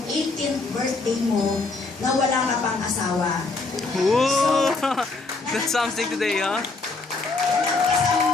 18th birthday mo na wala ka pang asawa. Whoa! That's something today, huh?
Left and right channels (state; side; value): quieter; right; 3.7 dB